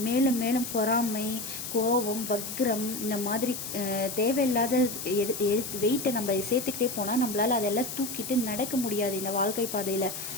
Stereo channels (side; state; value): left; noise; hiss, 7 dB below the sound